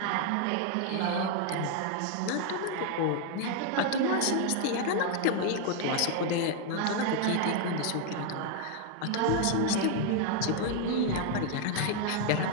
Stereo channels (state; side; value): different; both; correlation 0.00